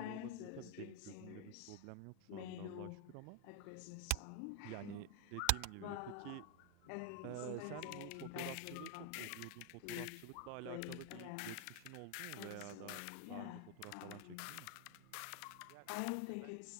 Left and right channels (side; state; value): both; different; correlation 0.00